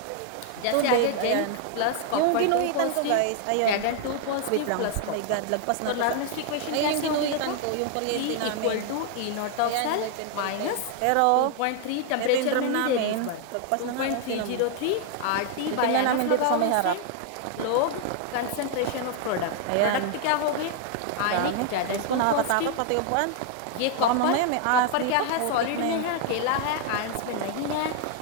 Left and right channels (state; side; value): different; both; correlation 0.00